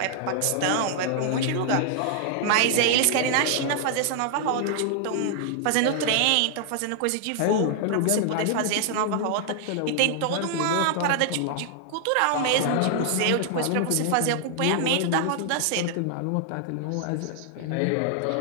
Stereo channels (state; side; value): different; both; correlation 0.00